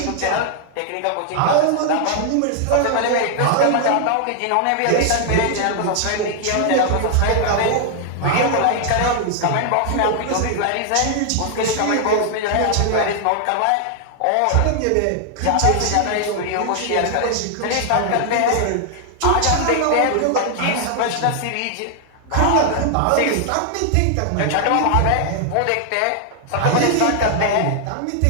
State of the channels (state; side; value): different; both; correlation 0.00